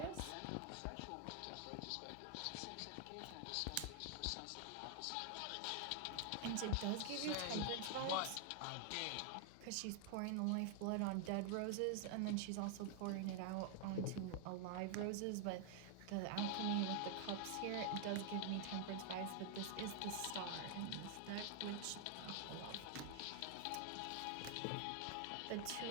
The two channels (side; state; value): both; different; correlation 0.00